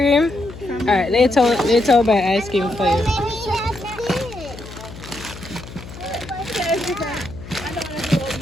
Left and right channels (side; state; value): left; noise; hum, 14 dB below the sound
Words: Alright, later I'll buy ice cream for you.